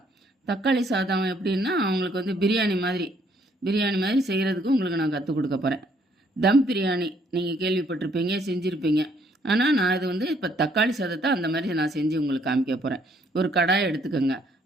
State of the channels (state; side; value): normal; both; correlation 0.67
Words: தக்காளி சாதம் எப்படின்னா, அவங்களுக்கு வந்து பிரியாணி மாதிரி செய்கிறதுக்கு உங்களுக்கு நான் கற்றுக் கொடுக்க போகிறேன். தம் பிரியாணி நீங்கள் கேள்விப்பட்டிருப்பீங்க, செஞ்சுருப்பீங்க. ஆனால் நான் இது வந்து இப்போ தக்காளி சாதத்தை அந்த மாதிரி நான் செஞ்சு உங்களுக்கு காமிக்க போகிறேன். ஒரு கடாயை எடுத்துக்கோங்க.